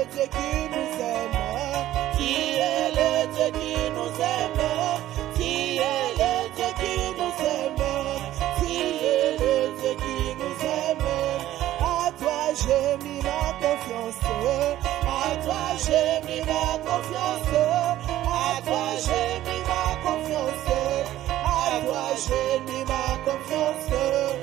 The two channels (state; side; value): quieter; left; 13.9 dB